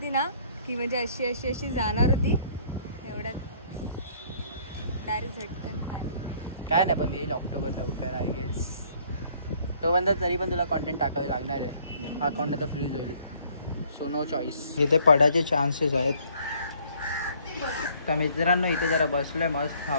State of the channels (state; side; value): inverted; both; correlation -0.60